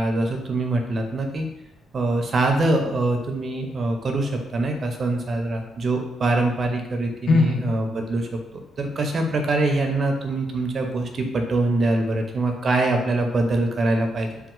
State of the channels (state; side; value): normal; both; correlation 0.81